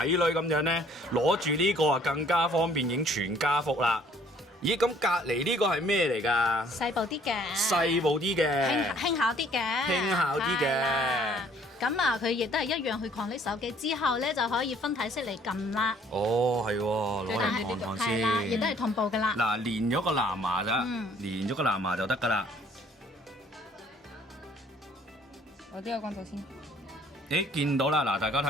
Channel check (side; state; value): both; normal; correlation 0.59